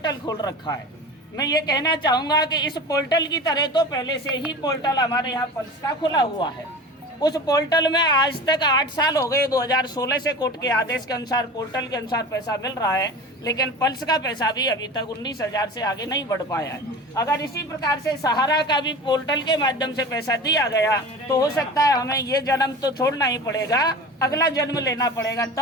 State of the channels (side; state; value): both; normal; correlation 0.34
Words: खोल रखा है। मैं ये कहना चाहूँगा कि इस पोर्टल की तरह तो पहले से ही पोर्टल हमारे यहाँ पल्स का खुला हुआ है। उस पोर्टल में आज तक 8 साल हो गए, 2016 से कोर्ट के आदेश के अनुसार पोर्टल के अनुसार पैसा मिल रहा है, लेकिन पल्स का पैसा भी अभी तक 19,000 से आगे नहीं बढ़ पाया है। अगर इसी प्रकार से सहारा का भी पोर्टल के माध्यम से पैसा दिया गया तो हो सकता है हमें ये जन्म तो छोड़ना ही पड़ेगा, अगला जन्म लेना पड़ेगा,